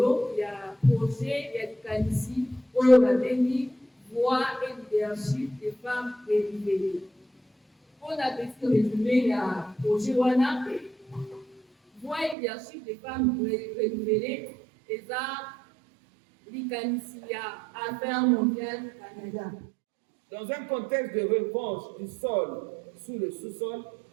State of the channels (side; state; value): left; drops out; at 12.4 s